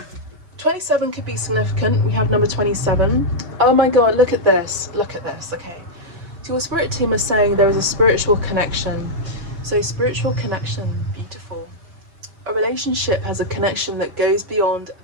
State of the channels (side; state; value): left; late; 5.7 ms